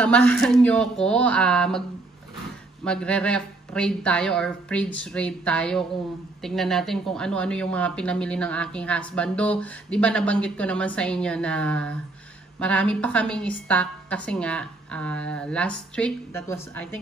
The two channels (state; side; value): quieter; left; 3.1 dB